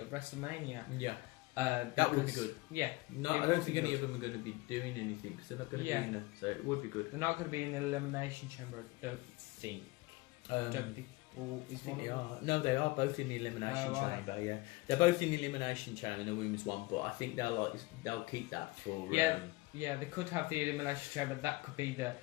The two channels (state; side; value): quieter; right; 22.3 dB